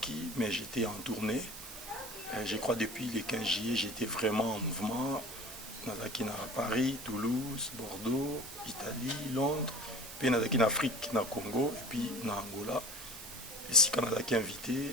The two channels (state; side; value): noise; right; hiss, 13 dB below the sound